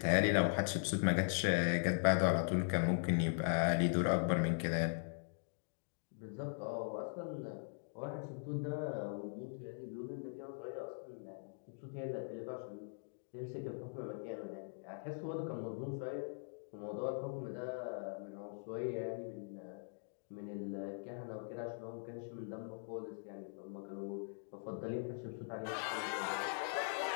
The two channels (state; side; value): silent; right; digital silence